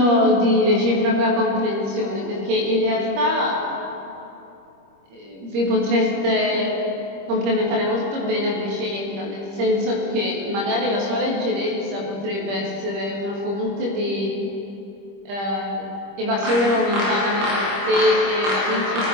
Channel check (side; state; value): left; late; 25 ms